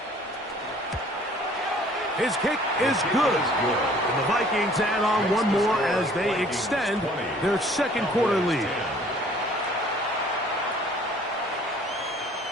His kick is good. And the Vikings add on one more as they extend their 2nd quarter lead.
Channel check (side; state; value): both; normal; correlation 0.55